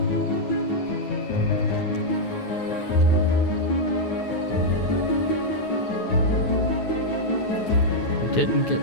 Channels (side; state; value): right; late; 9.4 ms